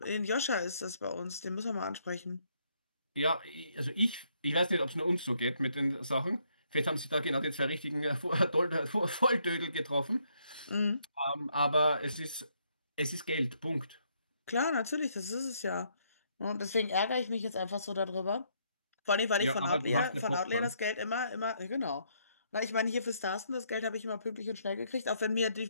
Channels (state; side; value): inverted; both; correlation -0.72